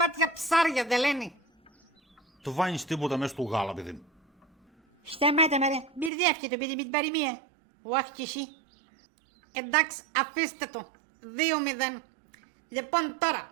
ψάρια δεν λένε. Το βάνεις τίποτα μέσα στο γάλα παιδί μου. Σταμάτα με ρε, μπερδεύκε το παιδί με την παροιμία. Όχι κι εσύ. Εντάξει, αφήστε το. 2-0. Λοιπόν τώρα,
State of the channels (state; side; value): drops out; left; at 6.1 s